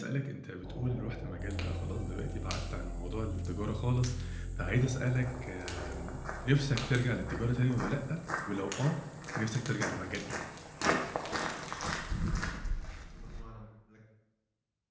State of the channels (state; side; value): identical; both; correlation 1.00